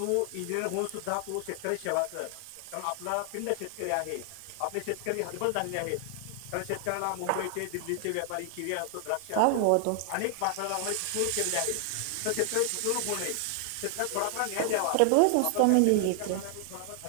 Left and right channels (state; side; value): different; both; correlation 0.00